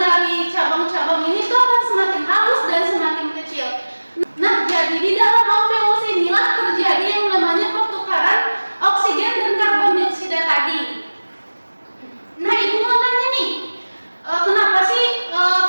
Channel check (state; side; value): inverted; both; correlation -1.00